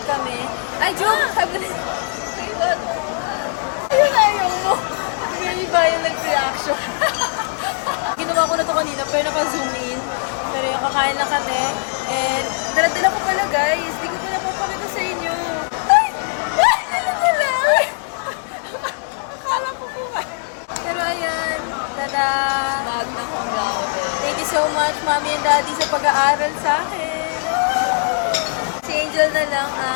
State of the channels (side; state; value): right; silent; digital silence